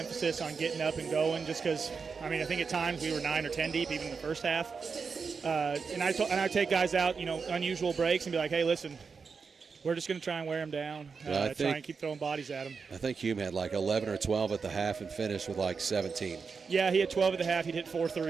on getting up and going just because, I think at times we were 9 or 10 deep even in the first half. And I take guys out, unusual breaks and be like, hey, listen, we're just going to try and wear them down, try and keep throwing bodies at them. I think Hume had like 11 or 12 at the half and finished with like 17. Yeah, he had 12 at the half. He'd hit 4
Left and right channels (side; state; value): left; quieter; 5.3 dB